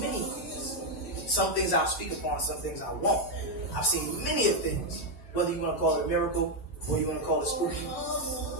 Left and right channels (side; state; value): right; late; 9.2 ms